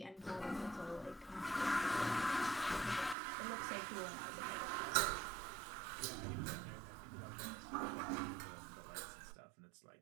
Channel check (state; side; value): drops out; left; at 3.2 s